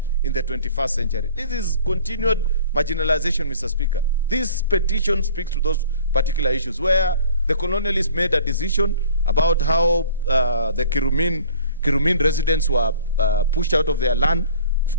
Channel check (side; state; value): both; inverted; correlation -0.48